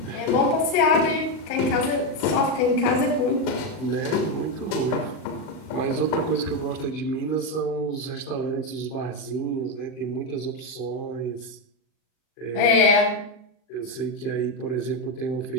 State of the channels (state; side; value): late; right; 39 ms